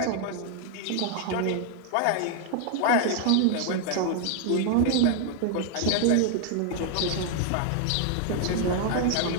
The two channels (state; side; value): different; both; correlation 0.00